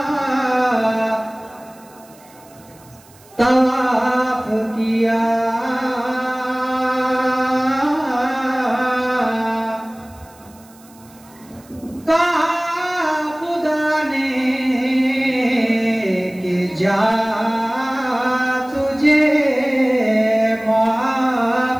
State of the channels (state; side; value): noise; right; hiss, 27 dB below the sound